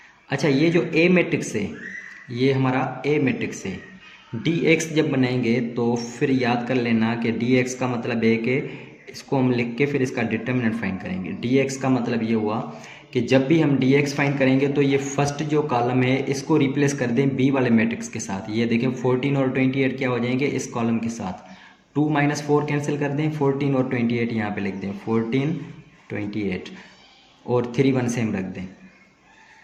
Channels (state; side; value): identical; both; correlation 1.00